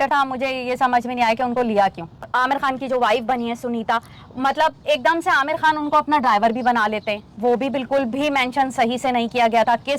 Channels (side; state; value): both; identical; correlation 1.00